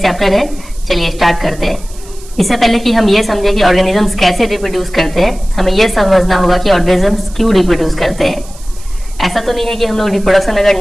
चैप्टर है। चलिए स्टार्ट करते हैं। इससे पहले कि हम ये समझे कि ऑर्गेनिजम्स कैसे रिप्रोड्यूस करते हैं, हमें ये समझना होगा कि ऑर्गेनिजम्स क्यों रिप्रोड्यूस करते हैं। ऐसा तो नहीं है कि हम लोग रिप्रोडक्शन अगर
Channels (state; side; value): noise; right; hiss, 21 dB below the sound